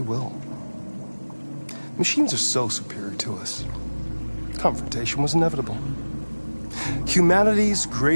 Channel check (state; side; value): inverted; both; correlation -1.00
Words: will. Machines are so superior to us. Confrontation was inevitable. Humanity's